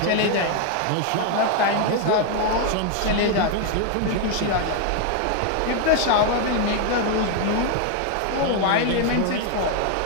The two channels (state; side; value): different; both; correlation 0.00